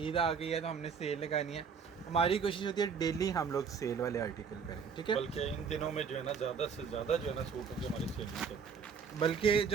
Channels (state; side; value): quieter; left; 6.2 dB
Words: ईद आ गई है तो हमने सेल लगानी है। हमारी कोशिश होती है डेली हम लोग सेल वाले आर्टिकल करें। ठीक है, बल्कि इन दिनों में जो है ना ज़्यादा से ज़्यादा जो है ना सूट की हमारी सेल चलती है। बल्कि